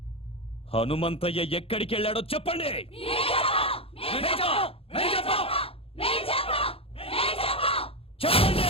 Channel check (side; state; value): right; late; 0.27 ms